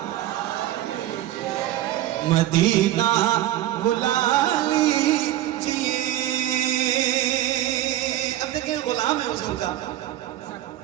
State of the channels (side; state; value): left; quieter; 13.8 dB